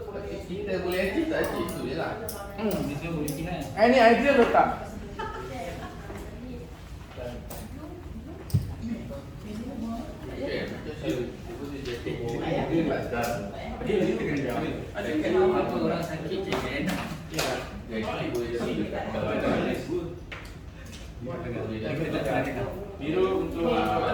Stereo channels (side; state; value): both; identical; correlation 1.00